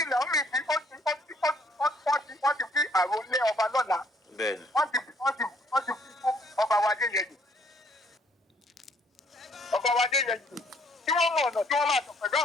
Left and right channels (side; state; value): both; normal; correlation 0.65